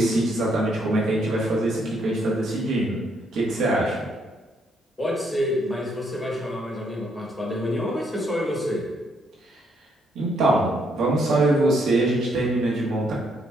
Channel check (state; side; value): normal; both; correlation 0.73